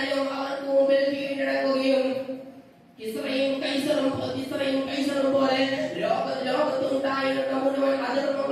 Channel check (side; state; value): both; identical; correlation 1.00